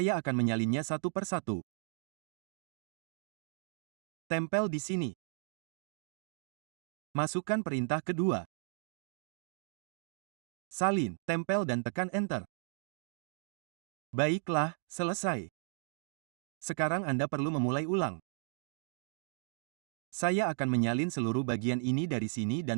akan menyalinnya satu persatu. Tempel di sini. Masukkan perintah kedua. Salin, tempel dan tekan Enter. Baiklah, selesai. Sekarang Anda perlu memulai ulang. Saya akan menyalin seluruh bagian ini dari sini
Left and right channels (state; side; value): silent; left; digital silence